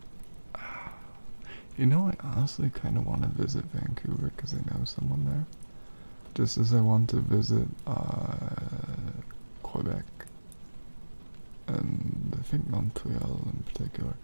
You know, I honestly kind of want to visit Vancouver because I know someone there. Just as I want to visit Quebec and I think Montreal in particular.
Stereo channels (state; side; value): inverted; both; correlation -1.00